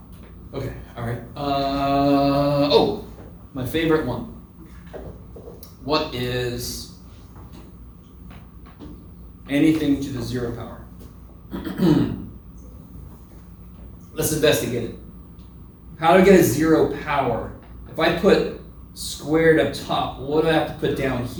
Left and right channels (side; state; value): both; identical; correlation 1.00